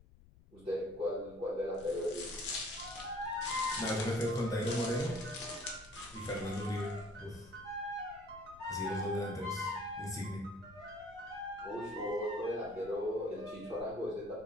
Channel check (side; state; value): left; noise; rumble, 22 dB below the sound